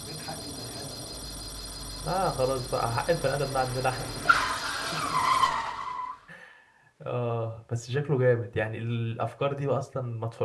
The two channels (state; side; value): identical; both; correlation 1.00